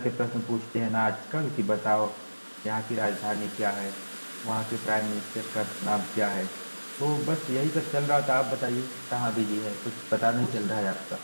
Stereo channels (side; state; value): both; inverted; correlation -1.00